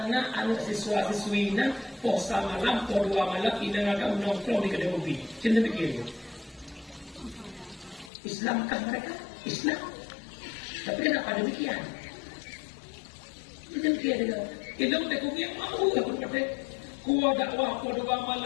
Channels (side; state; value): right; drops out; at 8.1 s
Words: na anak siswa-siswi na posa malam po 2 malam ina nga nongkrong di kedai kopi. Cinta fikir. Islamkah mereka? Islam. Tapi kenapa demikian? Demikian dia. Elok tak kuyo mau aku kata. Kuo dakwah po 2